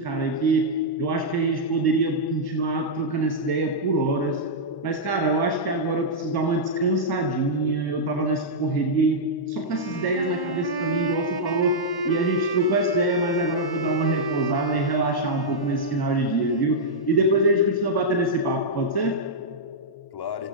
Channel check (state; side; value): late; right; 1.1 ms